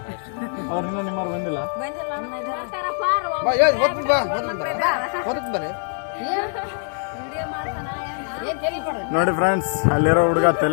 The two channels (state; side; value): silent; right; 59 dB below the other